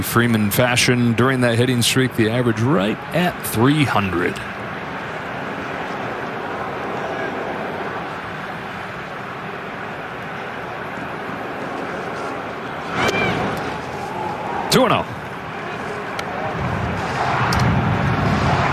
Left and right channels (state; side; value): identical; both; correlation 1.00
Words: Freeman fashion during that hitting streak. The average right at 300. Two and 0.